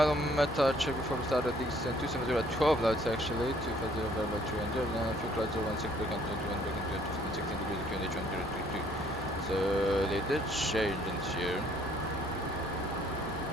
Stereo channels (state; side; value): noise; left; hum, 15 dB below the sound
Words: meta check before we start at descent. 270 at 12 knots actually. 250 about 300. And fuel clouds are 16 break on 21 break on 16 degrees. QNH 1022. So they did change in here.